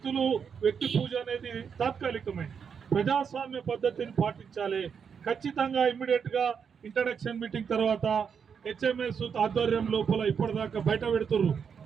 పూజ అనేది తాత్కాలికమే, ప్రజాస్వామ్య పద్ధతిని పాటించాలి. ఖచ్చితంగా ఇమ్మీడియట్ గా ఇంట్రడక్షన్ మీటింగ్ తర్వాత హెచ్ఎంఎస్ ఆధ్వర్యం లోపల ఇప్పటిదాకా బయట పెడుతున్నారు.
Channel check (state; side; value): quieter; left; 6.8 dB